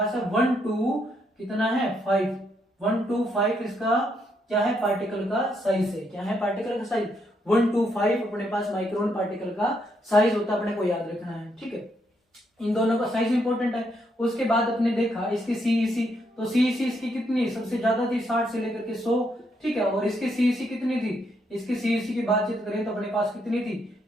है 1 to कितना है 5, 1 to 5 इसका क्या है, पार्टिकल का साइज है। क्या है पार्टिकल का साइज, 1 to 5 अपने पास माइक्रोन पार्टिकल का साइज होता है, अपने को याद रखना है, ठीक है। इन दोनों का साइज इंपॉर्टेंट है। उसके बाद अपने देखा इसकी सीईसी, तो सीईसी इसकी कितनी सबसे ज्यादा थी, 60 से लेकर के 100, ठीक है। और इसकी सीईसी कितनी थी, इसकी सीईसी की बातचीत करें तो अपने पास कितनी थी,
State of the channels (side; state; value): both; normal; correlation 0.76